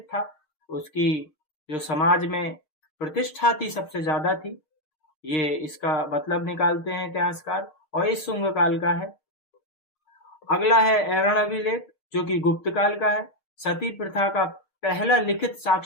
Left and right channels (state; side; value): late; right; 6.5 ms